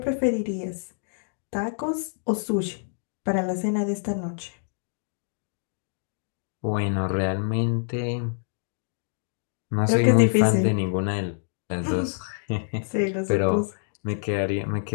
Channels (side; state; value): right; silent; digital silence